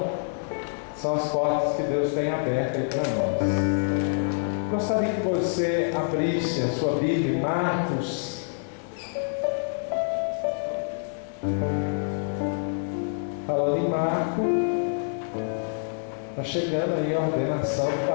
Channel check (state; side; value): silent; right; digital silence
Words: são as portas que Deus tem abertas aí para nós. Gostaria que você abrisse a sua Bíblia em Marcos. Falando em Marco, está chegando aí a ordenação do